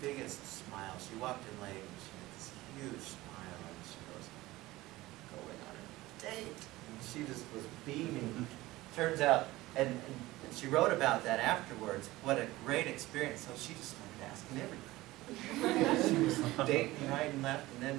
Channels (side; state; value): left; quieter; 18.4 dB